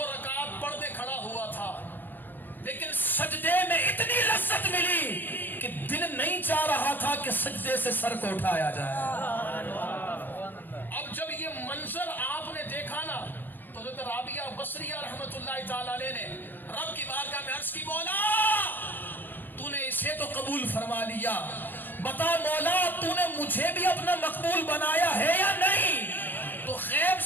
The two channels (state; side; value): late; right; 0.090 ms